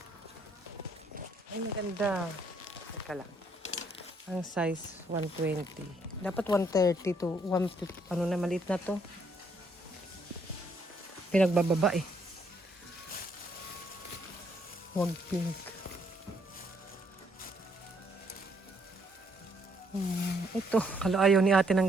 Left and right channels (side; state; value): both; normal; correlation 0.70